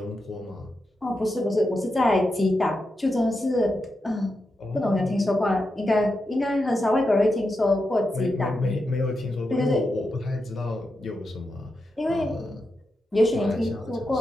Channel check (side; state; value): both; normal; correlation 0.87